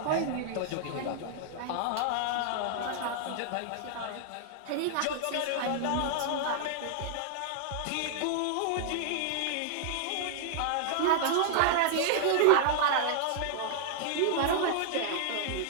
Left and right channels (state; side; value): different; both; correlation -0.01